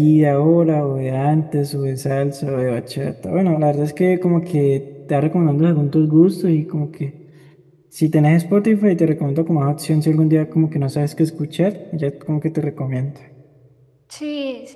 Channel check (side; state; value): both; identical; correlation 1.00